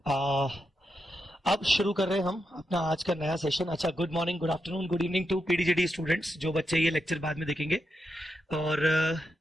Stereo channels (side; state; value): both; normal; correlation 0.85